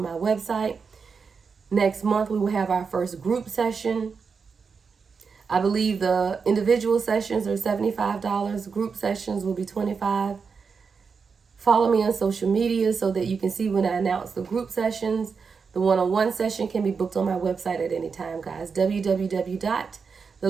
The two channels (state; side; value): quieter; left; 5.4 dB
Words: my website. Next month, we will have our first group session. I believe the individual sessions are $75. Group sessions will be $25. Follow me on social media so that you can see when I announce the group sessions. The one-on-one session can be booked on my website at any time, guys.